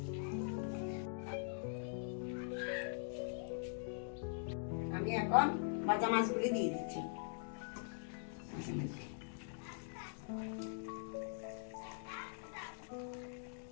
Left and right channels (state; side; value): silent; right; digital silence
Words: আমি এখন ভাজা মাছগুলি দিয়ে দিচ্ছি।